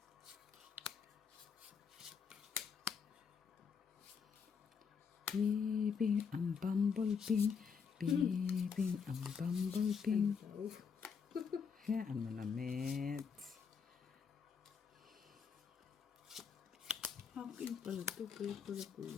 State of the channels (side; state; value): right; quieter; 6.2 dB